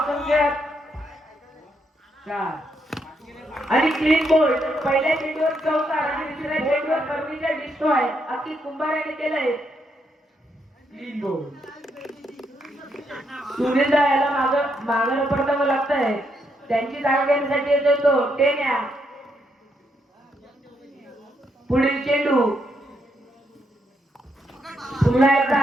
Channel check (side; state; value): both; normal; correlation 0.77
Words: संख्या 4 आणि क्लीन बोल्ड. पहिल्या चेंडूवर चौकार आणि दुसऱ्या चेंडूवर फर्निचर डिस्ट्रॉय अति कुंभार याने केलंय क्लीन बोल्ड. सुनीलदा याला मागं पडतावं लागतंय. त्यांची जागा घेण्यासाठी येतोय तो टेन्या. पुढील चेंडू पुन्हा एकदा